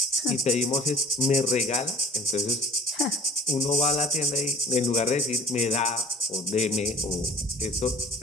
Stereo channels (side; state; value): both; normal; correlation 0.50